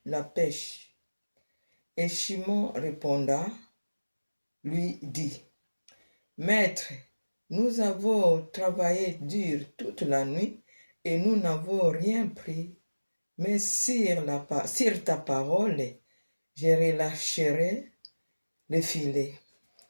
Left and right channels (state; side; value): inverted; both; correlation -1.00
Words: pêche. Et Shimon répondit, lui dit, Maître, nous avons travaillé dur toute la nuit et nous n'avons rien pris, mais sur ta parole, je relâcherai le filet.